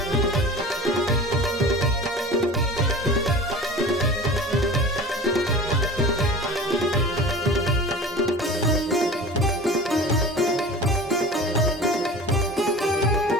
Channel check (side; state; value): both; normal; correlation 0.39